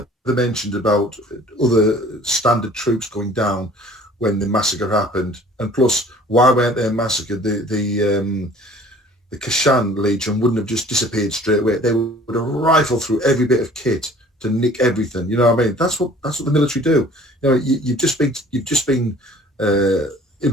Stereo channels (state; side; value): normal; both; correlation 0.51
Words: mentioned about other standard troops going down when the massacre happened, and plus, why weren't they massacred? The Kashan Legion wouldn't have just disappeared straight away. They would have rifled through every bit of kit to nick everything. You know what I mean? That's what the military do. You know, you've just been